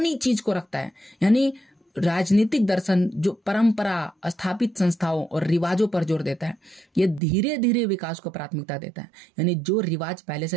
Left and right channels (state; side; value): drops out; left; at 7.2 s